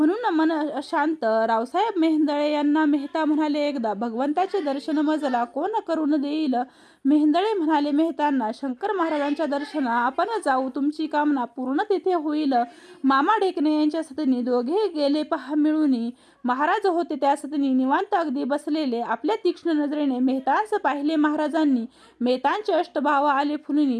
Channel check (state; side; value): identical; both; correlation 1.00